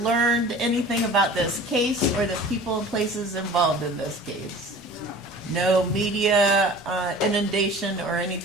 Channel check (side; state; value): both; normal; correlation 0.43